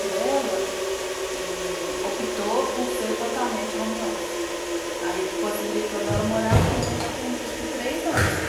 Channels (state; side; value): identical; both; correlation 1.00